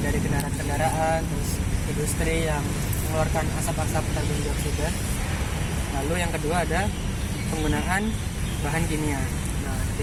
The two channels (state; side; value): identical; both; correlation 1.00